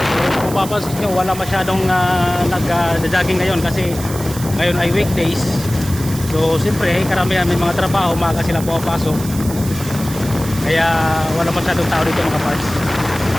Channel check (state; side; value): noise; right; hiss, 12 dB below the sound